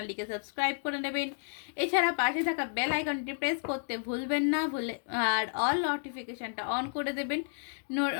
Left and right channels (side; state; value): right; silent; digital silence